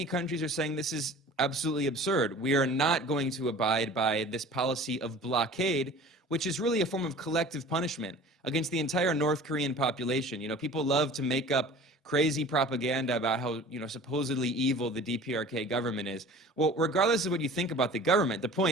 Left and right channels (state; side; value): normal; both; correlation 0.43